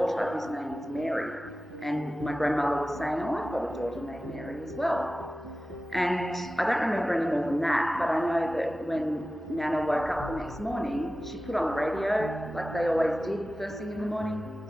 whose name was Mary. And my grandmother was saying, oh, I've got a daughter named Mary as well. And I don't remember any more than that, but I know that when Nana woke up the next morning, she put on the radio, like they always did first thing in the morning,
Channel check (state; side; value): normal; both; correlation 0.95